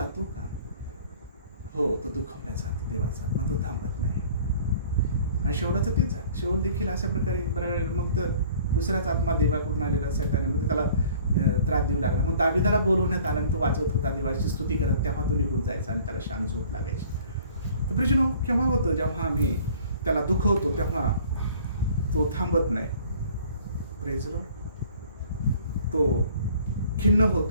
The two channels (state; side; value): inverted; both; correlation -0.51